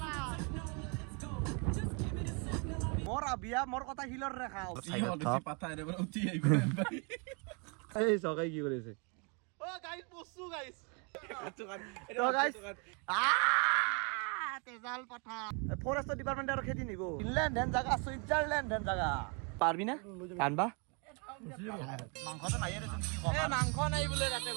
মোর আবিয়া মোর কথা হিলর রেখাও এই সকাই কি করেছে ও গাইস বসু গাইস তো গাইস তেজাল পাঠা ফরেস্ট ডিপার্টমেন্ট আর খেদি নিব ইনল্যান্ড হেন জায়গা সুইজারল্যান্ড হেন জায়গা পারবি না কানবা মাংসটো নাই রে কি কম মাংস নাই বোলে তাতে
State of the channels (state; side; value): quieter; left; 34.9 dB